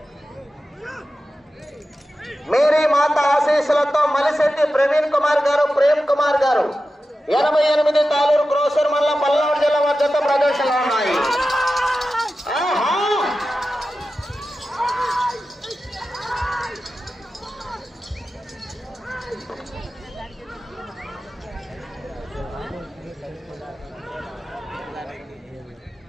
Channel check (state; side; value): normal; both; correlation 0.93